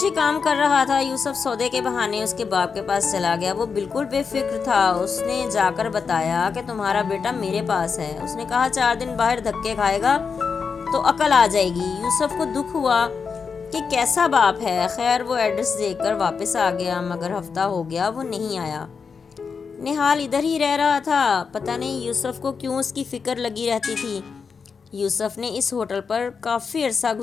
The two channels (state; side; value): quieter; right; 5.6 dB